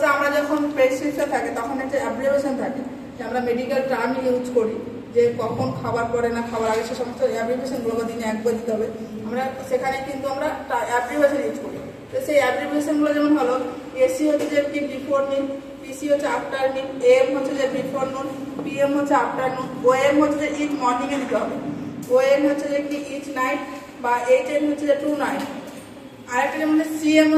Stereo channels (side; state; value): both; identical; correlation 1.00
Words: আমরা যখন প্রেসক্রিপশন থাকে তখন একটা অ্যাব্রিভিয়েশন থাকে যে আমরা মেডিকেল টার্ম ইউজ করি, যে কখন খাবার পরে না খাবার আগে সে সমস্ত অ্যাব্রিভিয়েশনগুলো দিনে একবার দিতে হবে। আমরা সেখানে কিন্তু আমরা অ্যাব্রিভিয়েশন ইউজ করি। তো সেই অ্যাব্রিভিয়েশনগুলো যেমন হলো এসি হচ্ছে যে কি বিফোর মিল, পিসি হচ্ছে আফটার মিল, এম হচ্ছে যে বিফোর নুন, পিএম হচ্ছে আফটারনুন, ওএম হচ্ছে যে ইচ মর্নিংয়ে দিতে হবে, ওএন হচ্ছে যে কি ইচ নাইট বা এইচএন হচ্ছে যে টু নাইট। আরেকটা যেমন সিএম